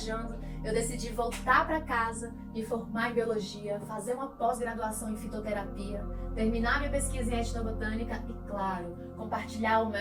eu decidi voltar para casa, me formar em biologia, fazer uma pós-graduação em fitoterapia, terminar minha pesquisa em etnobotânica e, claro, compartilhar o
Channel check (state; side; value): identical; both; correlation 1.00